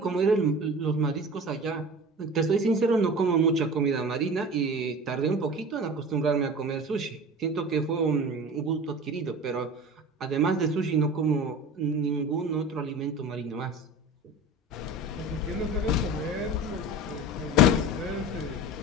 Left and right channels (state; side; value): normal; both; correlation 0.36